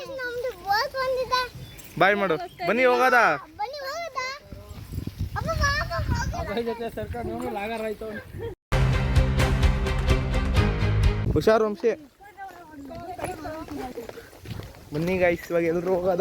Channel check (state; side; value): identical; both; correlation 1.00